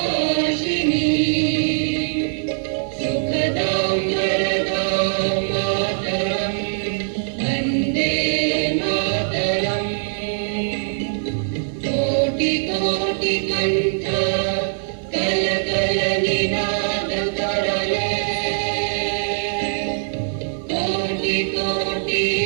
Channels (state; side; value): silent; left; digital silence